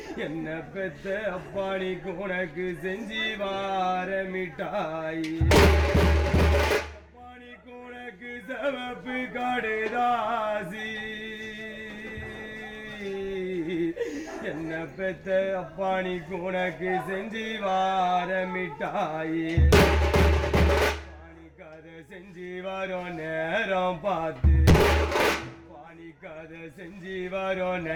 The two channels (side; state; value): both; identical; correlation 1.00